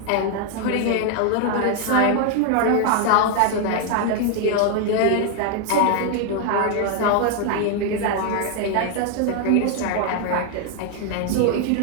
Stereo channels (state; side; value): different; both; correlation 0.00